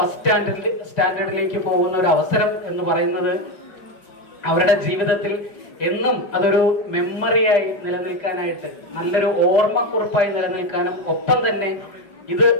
സ്റ്റാൻഡേർഡിലേക്ക് പോകുന്ന ഒരു അവസരം എന്ന് പറയുന്നത് അവരുടെ ജീവിതത്തിൽ എന്നും അതൊരു മെമ്മറിയായി നിലനിൽക്കാനായിട്ട്, നല്ലൊരു ഓർമ്മക്കുറിപ്പായി നിലനിൽക്കാനും, ഒപ്പം തന്നെ ഇത്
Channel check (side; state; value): right; late; 5.5 ms